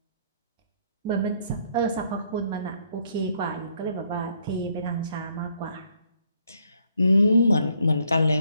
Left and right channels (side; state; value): both; inverted; correlation -0.69